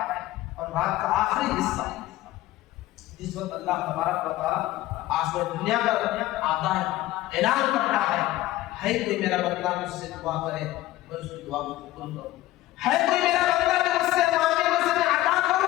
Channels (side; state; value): right; quieter; 16.3 dB